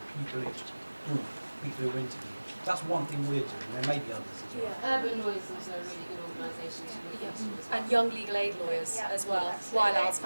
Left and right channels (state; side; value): inverted; both; correlation -1.00